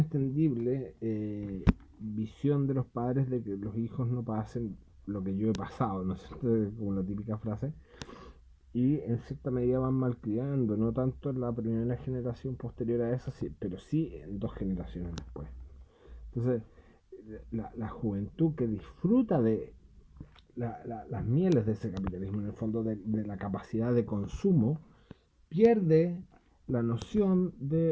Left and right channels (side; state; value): both; identical; correlation 1.00